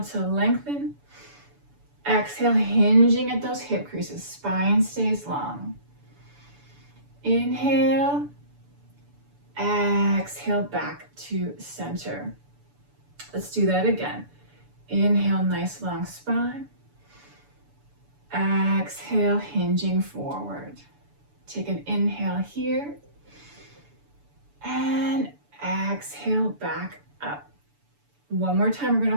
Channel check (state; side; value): late; left; 6.9 ms